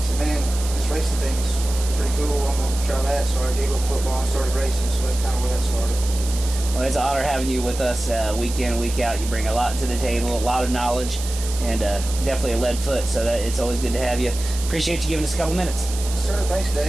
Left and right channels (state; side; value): noise; right; hiss, 10 dB below the sound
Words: said, man, this racing thing's pretty cool. I'm going to try that. So I gave up football and started racing. So that's kind of where that started. Well, it's an honor having you with us week in, week out. You bring a lot to the table, a lot of knowledge, and definitely a lead foot. So it's always good to have you. Appreciate you giving us a couple minutes. Sir, thanks,